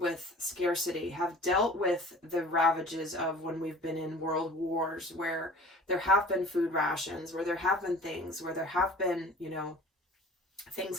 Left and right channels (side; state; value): both; normal; correlation 0.45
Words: scarcity, have dealt with the ravages of when we've been in world wars, where there have been food rations, where there have been things, where there have been, you know, things